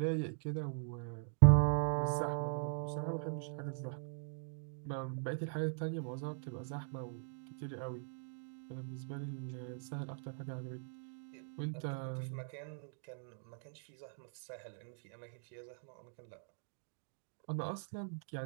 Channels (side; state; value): left; silent; digital silence